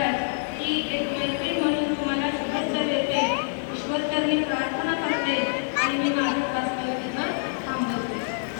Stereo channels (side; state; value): right; silent; digital silence